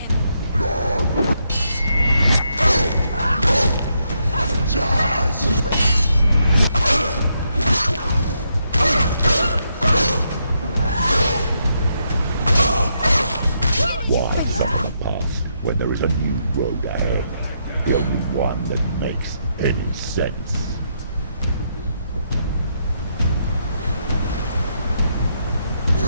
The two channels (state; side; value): inverted; both; correlation -0.79